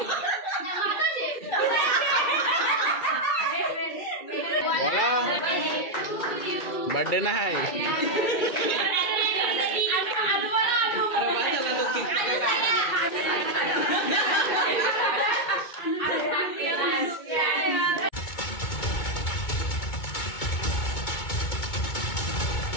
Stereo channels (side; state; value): right; late; 2.2 ms